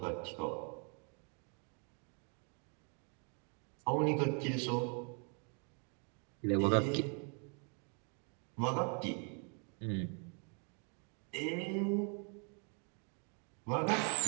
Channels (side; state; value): left; quieter; 38.4 dB